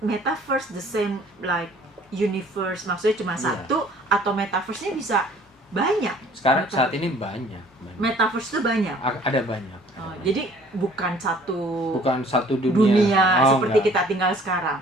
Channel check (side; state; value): both; normal; correlation 0.54